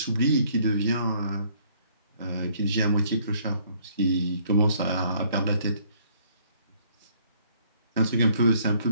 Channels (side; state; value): both; inverted; correlation -0.64